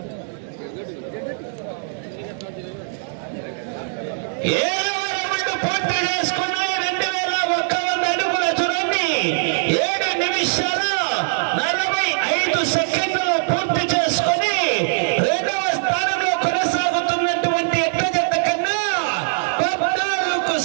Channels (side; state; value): left; silent; digital silence